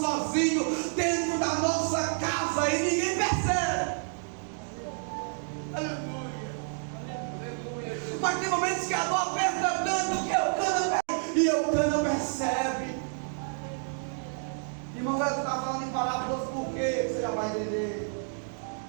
dentro da nossa casa e ninguém percebe. Aleluia. Mas tem momentos que a dor aperta tanto que Eucana percebe.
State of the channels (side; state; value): left; silent; 58 dB below the other